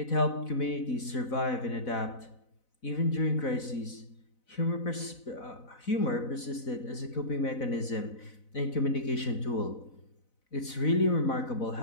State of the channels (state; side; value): late; right; 4.0 ms